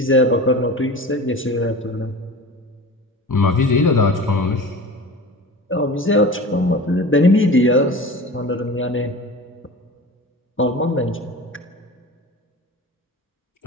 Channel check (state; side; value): normal; both; correlation 0.35